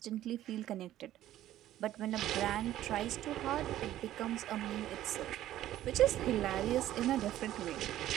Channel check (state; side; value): quieter; left; 13.3 dB